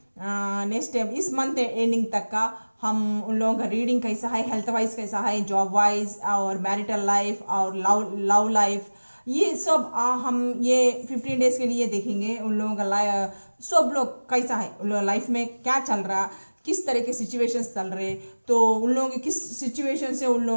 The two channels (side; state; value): both; inverted; correlation -1.00